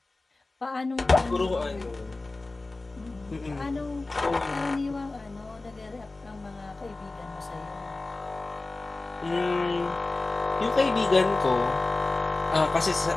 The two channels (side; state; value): right; quieter; 3.2 dB